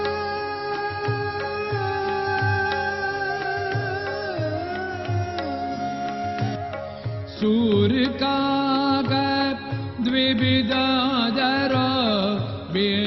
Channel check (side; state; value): both; identical; correlation 1.00